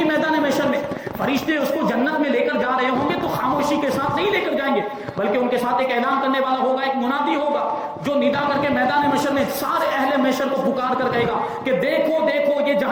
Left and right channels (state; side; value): identical; both; correlation 1.00